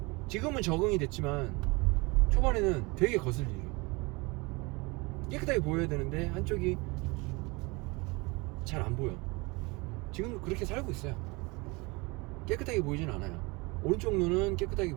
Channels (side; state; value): left; quieter; 26.0 dB